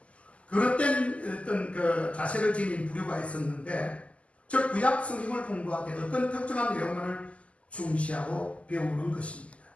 그릇된 어떤 그 자세를 지닌 부류가 있었는데 즉 구약 성경을 공부하되 어떤 특정한 내용만을 중시하고 배우는 것입니다.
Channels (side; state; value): right; late; 0.063 ms